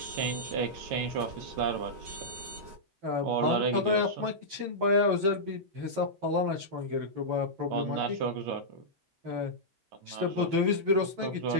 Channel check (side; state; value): left; late; 10 ms